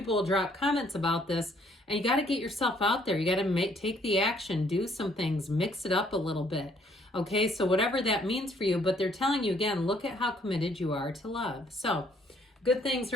will drop comments about this, and you got to get yourself out there. You got to take the action, do some things, mix it up a little bit. Okay, so whatever that means for you, but they're telling you again, look at how committed you are to love. So good things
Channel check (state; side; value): normal; both; correlation 0.65